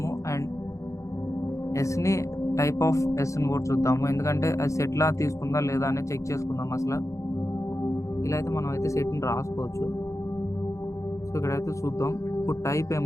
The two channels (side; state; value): right; late; 0.15 ms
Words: అండ్ ఎస్ని టైప్ ఆఫ్ ఎస్ని కూడా చూద్దాము, ఎందుకంటే అది సెట్లా తీసుకుందా లేదా అని చెక్ చేసుకుందాం అసలు. ఇలా అయితే మనం అయితే సెట్ని రాసుకోవచ్చు. సో ఇక్కడైతే చూద్దాం ఇప్పుడు టైప్